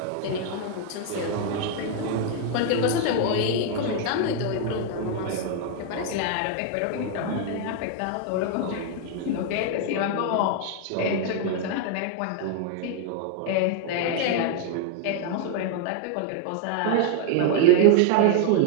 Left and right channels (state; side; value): different; both; correlation 0.00